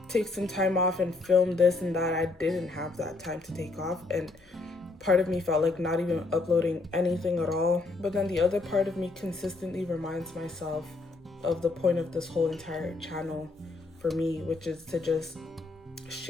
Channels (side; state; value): right; quieter; 3.5 dB